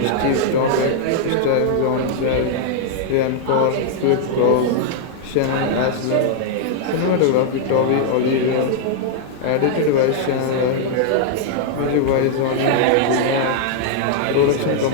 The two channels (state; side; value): different; both; correlation -0.01